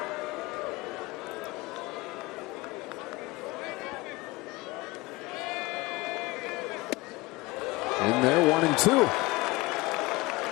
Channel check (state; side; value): quieter; right; 22.0 dB